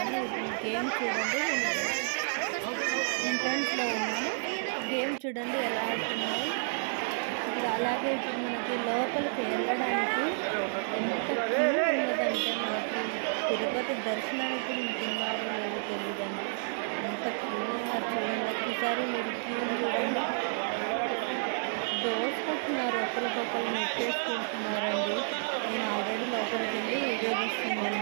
గేమ్ చూడండి, ఎంట్రన్స్లో ఉన్నాను. గేమ్ చూడండి ఎలా ఆడుతున్నాయి. ఇప్పుడు అలాగే ఇప్పుడు మనకి లోపలికి వెళ్ళడానికి ఎంత క్యూ ఉన్నదంటే, మనకి తిరుపతి దర్శనానికి ఉంటున్నారో లేదో తెలియదండి, ఎంత క్యూ ఉన్నారు చూడండి. ఒకసారి మీరు క్యూ చూడండి, దోసుకుంటున్నారు, ఒకరికొకరు నెట్టేసుకుంటున్నారండి. నేను ఆల్రెడీ లోపలికి వెళ్ళి వీడియో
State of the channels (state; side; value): silent; left; digital silence